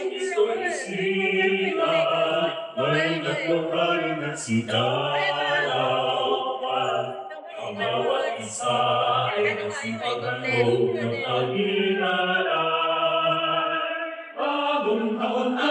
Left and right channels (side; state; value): both; identical; correlation 1.00